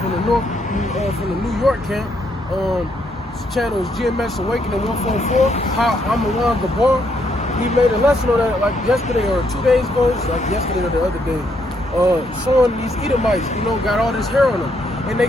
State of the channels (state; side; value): normal; both; correlation 0.74